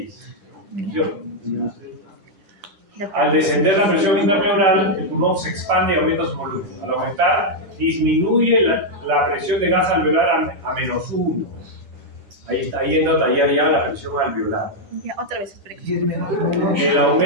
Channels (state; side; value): late; left; 10 ms